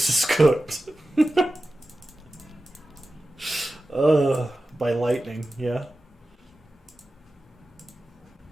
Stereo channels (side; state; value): both; normal; correlation 0.94